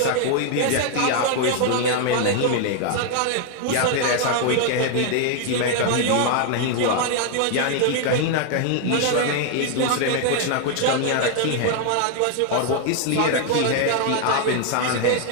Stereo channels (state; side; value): different; both; correlation 0.00